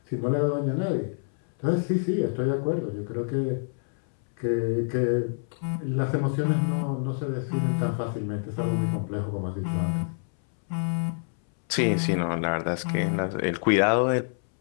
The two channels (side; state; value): right; silent; 60 dB below the other